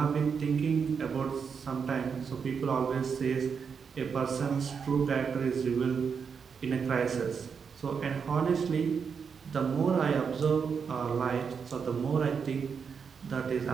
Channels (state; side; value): quieter; left; 6.2 dB